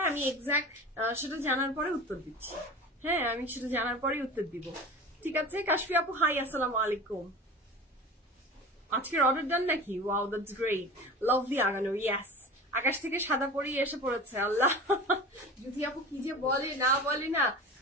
আমি এক্সাক্ট সেটা জানার পরে উত্তর দিচ্ছি। হ্যাঁ, আমি সেটা জানার পরে উত্তর দিব, ঠিক আছে? কাশফি আপু হাই, আসসালামু আলাইকুম। আজকের অর্ডার ডান নাকি? ওয়াও, দ্যাটস গ্রেট, লাভলি আগানো। ইয়েস, আকাশ থেকে সাদা পরি এসে পড়েছে। আল্লাহ, যদি আপু কি যে বলে না বলে না,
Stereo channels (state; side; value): normal; both; correlation 0.35